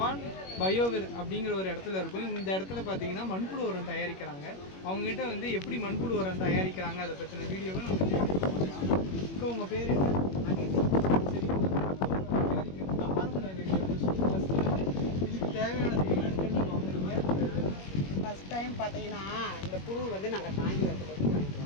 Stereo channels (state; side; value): late; right; 21 ms